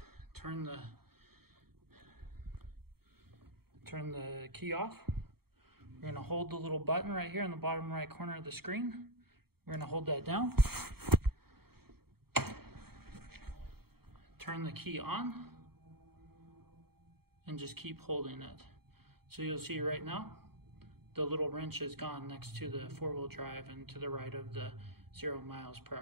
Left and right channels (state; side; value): late; left; 0.95 ms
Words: turn the key off. We're gonna hold the little button right here in the bottom right corner of the screen. We're gonna hold that down. Turn the key on and just keep holding it. So you'll see right now, the little wrench is gone next to the 4-wheel drive and to the right of the 0 miles per